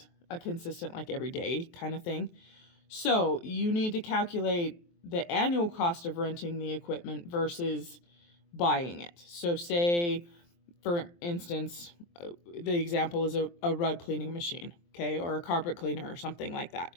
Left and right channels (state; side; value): late; right; 23 ms